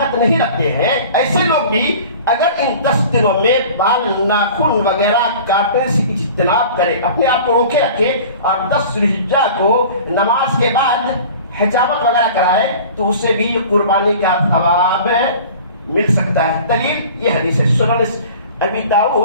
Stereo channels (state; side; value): inverted; both; correlation -0.42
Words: نہیں رکھتے ہیں، ایسے لوگ بھی اگر ان 10 دنوں میں بال ناخن وغیرہ کاٹنے سے اجتناب کرے، اپنے آپ کو روکے رکھے اور 10 ذی الحجہ کو نماز کے بعد حجامت وغیرہ کرائے تو اسے بھی قربانی کا ثواب مل سکتا ہے۔ دلیل یہ حدیث ہے، سنن ابی